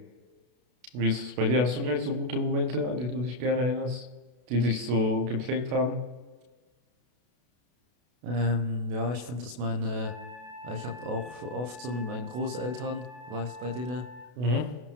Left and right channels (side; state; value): left; late; 32 ms